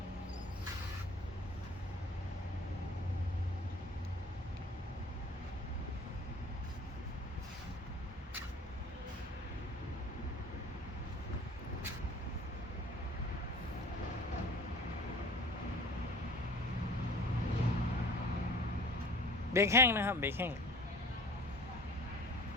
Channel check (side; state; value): both; normal; correlation 0.45